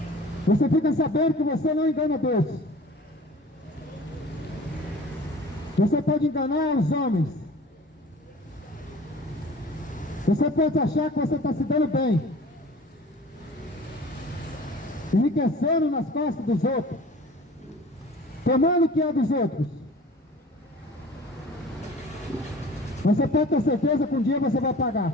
Você fica sabendo que você não engana Deus. Você pode enganar os homens. Você pode achar que você está se dando bem, enriquecendo nas costas dos outros, tomando o que é dos outros. Mas você pode ter certeza que um dia você vai pagar.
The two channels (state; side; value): normal; both; correlation 0.44